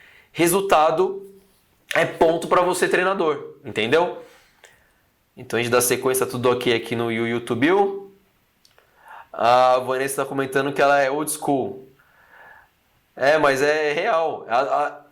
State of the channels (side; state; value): both; identical; correlation 1.00